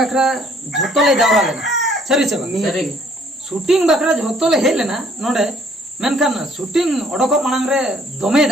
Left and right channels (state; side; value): normal; both; correlation 0.61